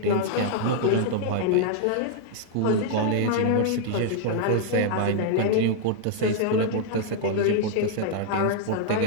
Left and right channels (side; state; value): both; different; correlation -0.01